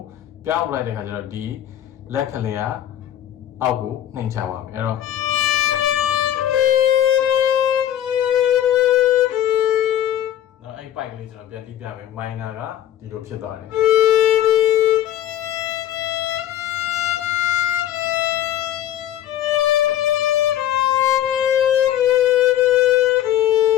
ပြောင်းလိုက်တဲ့ခါကျတော့ဒီလက်ကလေးကအောက်ကိုနှိမ့်ချပါမယ်အဲ့တော့နော်အဲ့ပိုက်ကလေးကျွန်တော်ပြန်တီးပြမယ် minor ကဒီလိုဖြစ်သွားတယ်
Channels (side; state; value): right; quieter; 11.6 dB